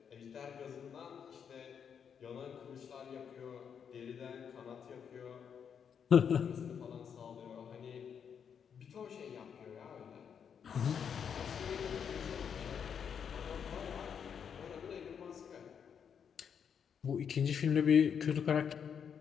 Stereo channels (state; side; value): quieter; right; 7.4 dB